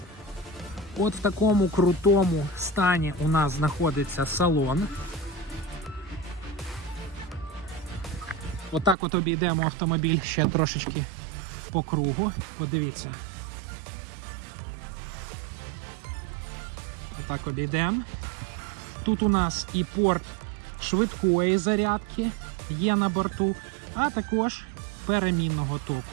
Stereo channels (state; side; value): drops out; left; at 9.0 s